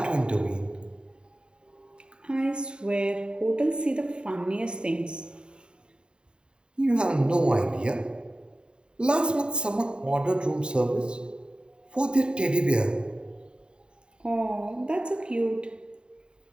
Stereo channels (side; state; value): left; late; 0.050 ms